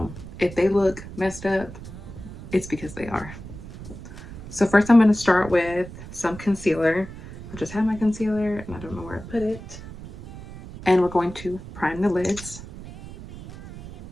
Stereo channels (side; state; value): right; noise; rumble, 14 dB below the sound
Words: if they look messed up, it's because they are. So first I'm going to start with some concealer. I just have my concealer and I don't know where I put it. And we're going to prime the lids.